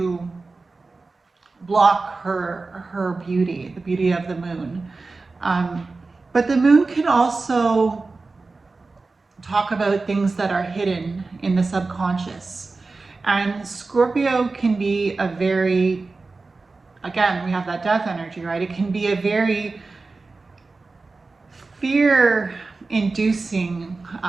block her beauty, the beauty of the moon. But the moon can also talk about things that are hidden in the subconscious. And Scorpio can be a very, again, we have that death energy, right? It can be a very fear-inducing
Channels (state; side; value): quieter; left; 3.8 dB